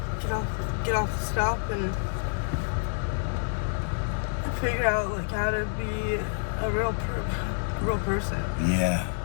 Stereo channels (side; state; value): right; silent; 56 dB below the other